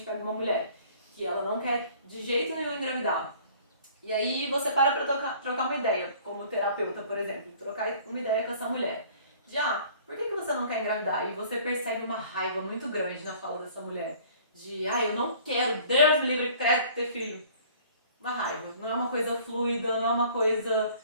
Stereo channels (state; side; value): inverted; both; correlation -0.52